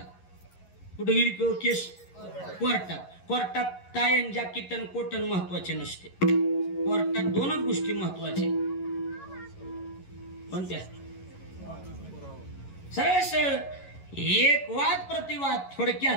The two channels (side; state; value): right; late; 11 ms